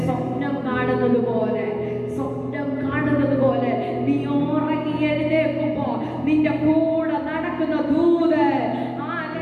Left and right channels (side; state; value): both; identical; correlation 1.00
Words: സ്വപ്നം കാണുന്നത് പോലെ, സ്വപ്നം കാണുന്നത് പോലെ നീ ഉറങ്ങി എഴുന്നേൽക്കുമ്പോ നിന്റെ കൂടെ നടക്കുന്ന ദൂതൻ,